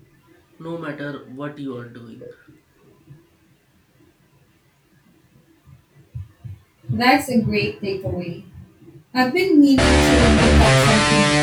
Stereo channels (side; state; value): both; identical; correlation 1.00